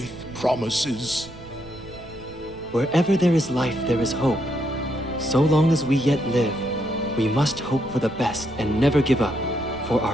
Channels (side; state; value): right; noise; rumble, 18 dB below the sound